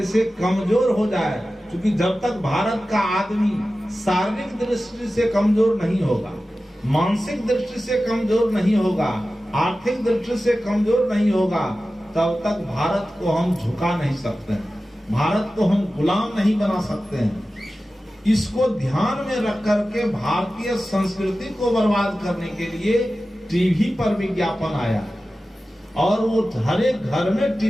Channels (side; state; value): both; normal; correlation 0.95